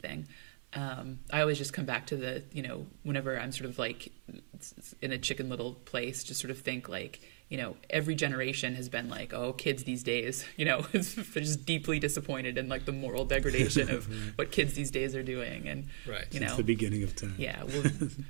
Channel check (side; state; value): left; silent; 53 dB below the other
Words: I always just come back to the whenever I'm sort of like in a Chicken Little place, just sort of think like every generation has been like, oh, kids these days, they're just deeply disappointed in like the moral degradation of what kids these days are doing, and It's the beginning of time. Yeah,